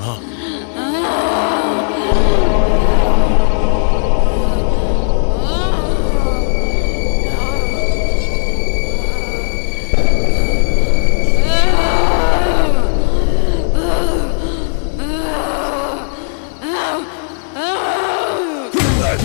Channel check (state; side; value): silent; right; 70 dB below the other